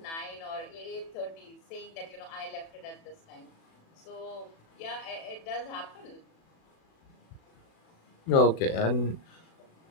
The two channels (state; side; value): late; right; 36 ms